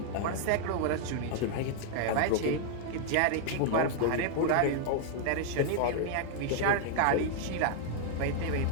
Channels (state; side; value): different; both; correlation 0.00